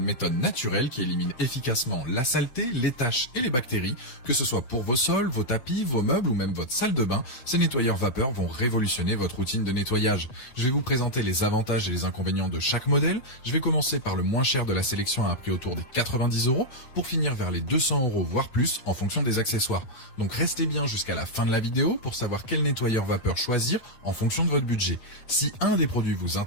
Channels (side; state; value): right; late; 8.0 ms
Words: méthode naturelle qui élimine efficacement la saleté, les taches et les bactéries. Que ce soit pour vos sols, vos tapis, vos meubles ou même votre salle de bain, ces nettoyeurs vapeur vont révolutionner votre routine de nettoyage. Je vais vous présenter les avantages et les inconvénients de chaque modèle. Je vais commencer par le moins cher de la sélection à un prix autour des 90 € pour finir vers les 200 € voire plus en fonction des accessoires. Donc restez bien jusqu'à la fin de la vidéo pour savoir quel nettoyeur vapeur choisir en fonction de votre budget. Si un des produits vous